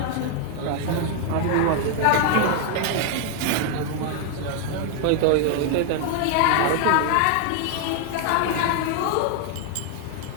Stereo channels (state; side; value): different; both; correlation 0.00